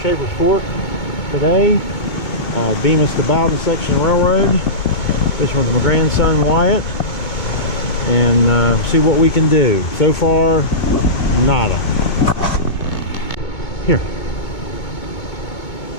Shaver's Fork today. Bemis to Bowden section railroad. Fishing with my grandson Wyatt. And see what we can do. So far, nada. Here.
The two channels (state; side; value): late; right; 2.2 ms